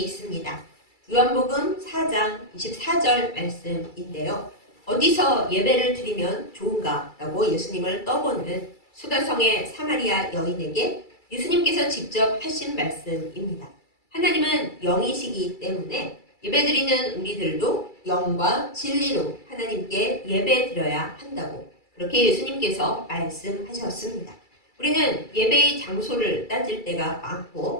있습니다. 요한복음 4장 24절 말씀인데요. 어디서 예배를 드리면 좋은가? 라고 예수님을 떠보는 수가성의 사마리아 여인에게 예수님께서 직접 하신 말씀입니다. 하나님은 영이시기 때문에 예배드리는 우리들도 영과 진리로 하나님께 예배드려야 한다고 그렇게 예수님께서 말씀하셨습니다. 우리는 예배의 장소를 따질 때가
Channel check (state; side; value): late; right; 2.3 ms